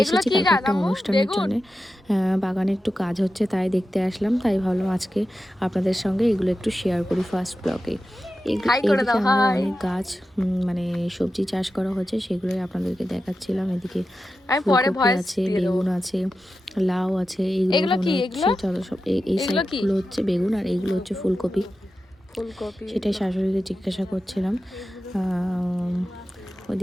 এসেছি কালকে একটা অনুষ্ঠানের জন্য, বাগানে একটু কাজ হচ্ছে তাই দেখতে আসলাম। তাই ভাবলাম আজকে আপনাদের সঙ্গে এগুলো একটু শেয়ার করি ফার্স্ট ব্লগে। এদিকে আমাদের অনেক গাছ, মানে সবজি চাষ করা হচ্ছে, সেগুলোই আপনাদেরকে দেখাচ্ছিলাম। এদিকে ফুলকপি আছে, বেগুন আছে, লাউ আছে। এইগুলো মনে হচ্ছে চলো সব এই সাইডগুলো হচ্ছে বেগুন আর এইগুলো হচ্ছে ফুলকপি। সেটাই শাশুড়িকে জিজ্ঞাসা করছিলাম।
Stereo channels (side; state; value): both; normal; correlation 0.92